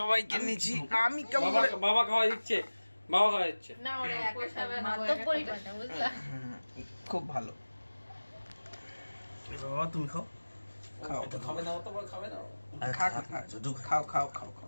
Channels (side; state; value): both; inverted; correlation -1.00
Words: নিচ্ছি আমি কেমন বাবা খাওয়া দিচ্ছে, বাবা খাওয়া দিচ্ছে। না ওরা একই সাথে মাত্র পরিবারটা বুঝলা। খুব ভালো। বাবা তুমি খাও। খাও তো খাবে না, অত বড় খাবে না। খাও খাও খাও